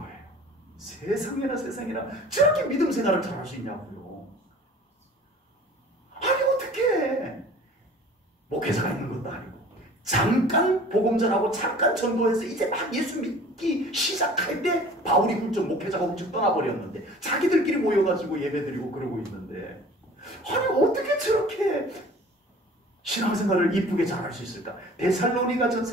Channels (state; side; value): normal; both; correlation 0.46